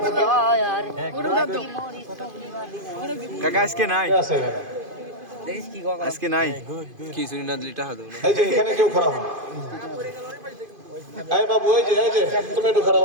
হন। কাকা আজকে নাই, আছে আজকে নাই কি শুনি না দিলি টাকা দেব না। এই যে এখানে কেউ খারাপ হন। এই বাবু, এই যে তুমি একটু খারাপ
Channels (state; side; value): late; left; 2.5 ms